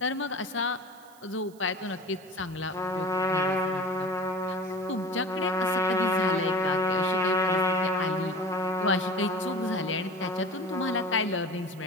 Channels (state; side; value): noise; right; hiss, 26 dB below the sound